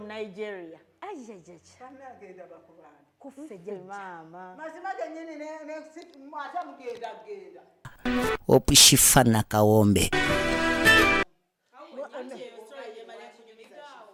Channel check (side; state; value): both; identical; correlation 1.00